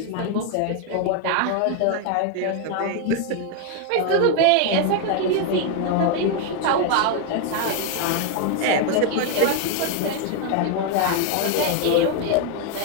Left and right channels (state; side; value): different; both; correlation 0.01